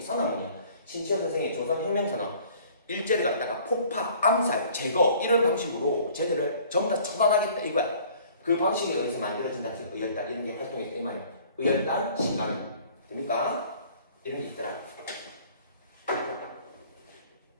선언문이야. 신치호 선생의 조선혁명선언 일제를 갖다가 폭파, 암살, 제거 이런 방식으로 쟤들을 전부 다 처단하겠다 이거야. 그 방식에 의해서 만들어진 단체가 의열단 이런 게 활동했다 이 말이야. 의열단, 신간은 됩니까? 이런 게 있더라.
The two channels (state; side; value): inverted; both; correlation -0.53